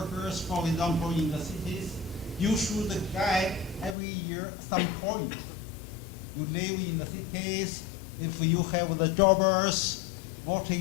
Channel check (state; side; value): drops out; right; at 4.0 s